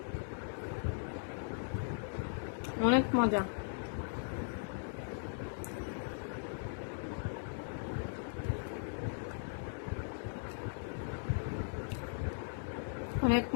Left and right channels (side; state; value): right; silent; digital silence